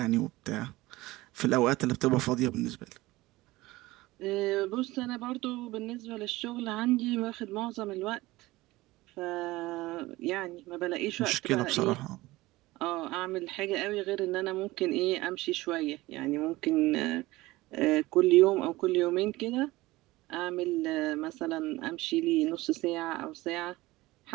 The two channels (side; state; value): left; quieter; 19.3 dB